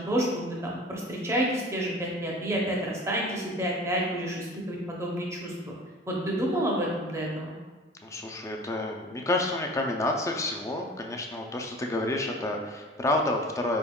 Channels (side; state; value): both; normal; correlation 0.41